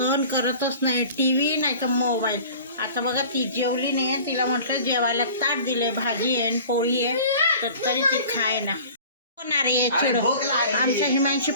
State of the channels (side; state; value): both; inverted; correlation -0.43